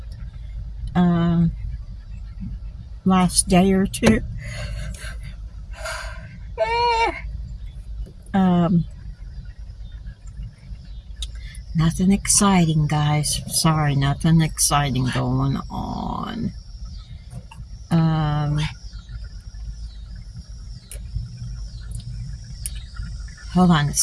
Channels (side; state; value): both; identical; correlation 1.00